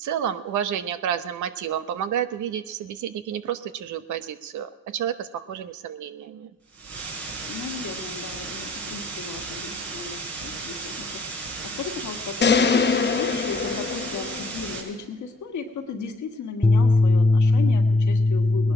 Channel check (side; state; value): both; normal; correlation 0.56